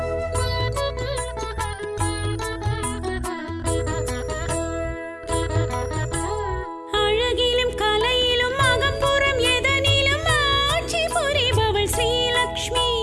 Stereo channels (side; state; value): both; identical; correlation 1.00